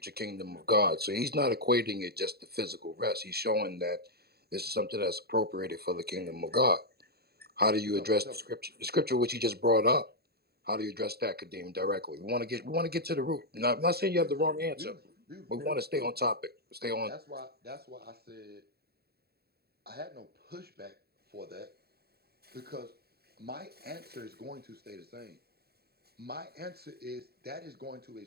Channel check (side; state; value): left; late; 0.46 ms